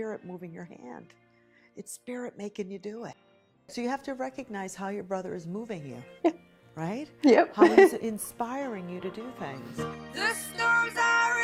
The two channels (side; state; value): both; identical; correlation 1.00